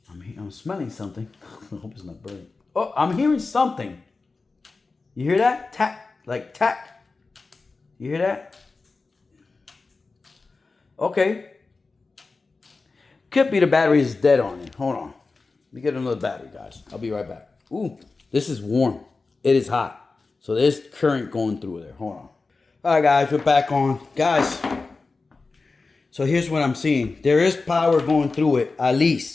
I'm smelling something. I hope it's not burning. Oh, I'm hearing something. You hear that? Tack, like tack. You hear that? Okay. Could be the battery is dead on it. Hold on. Let me get another battery, guys. I'll be right back. Ooh, this is warm. It is hot. So there's current going through there. Hold on. All right, guys, we're back on. Guys, so here's what I'm seeing. There is power going through it, at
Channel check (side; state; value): right; quieter; 3.9 dB